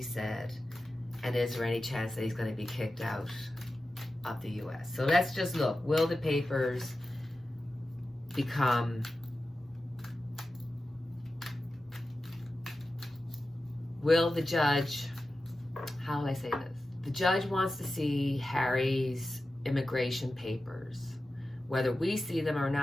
said? And is there any chance that he's going to be kicked out of the U.S.? So let's just look. Will the papers become... Will the judge... How will I say this? The judge wants to see Harry's immigration papers. Whether we see them or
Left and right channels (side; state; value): both; normal; correlation 0.93